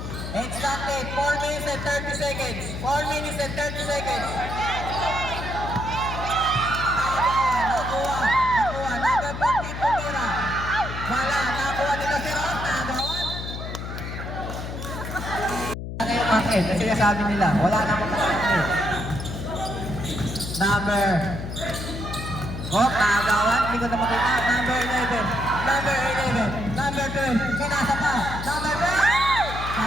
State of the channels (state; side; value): noise; left; hum, 7 dB below the sound